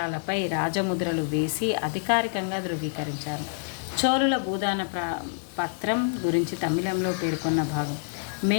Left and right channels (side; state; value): right; silent; digital silence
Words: రాజముద్రలు వేసి అధికారికంగా ధృవీకరించారు. చోళుల భూదాన పత్రం గురించి తమిళంలో పేర్కొన్న భాగం.